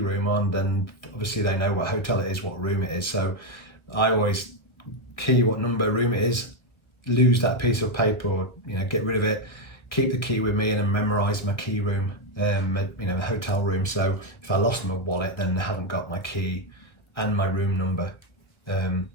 room on, then obviously they know what hotel it is, what room it is. So I always key what number room it is, lose that piece of paper, or get rid of it, keep the key with me, and then memorize my key room, the hotel room. So if I lost my wallet, then I haven't got my key and my room number.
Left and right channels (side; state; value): right; late; 1.6 ms